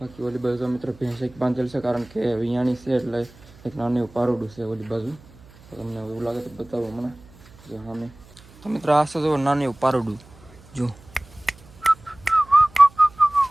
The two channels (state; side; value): noise; right; hum, 24 dB below the sound